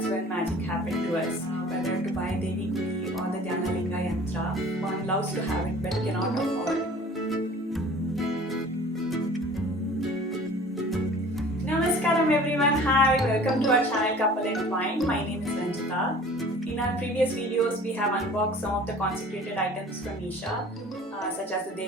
when magic happened to us. Whether to buy Devi Gudi or the Dhyanalinga Yantra, one loves to have it but cannot afford. Namaskaram everyone, hi, welcome to our channel Couple and Wine. My name is Ranjita. In our previous videos, we have unboxed some of the consecrated items from Isha, such as the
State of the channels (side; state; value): both; normal; correlation 0.46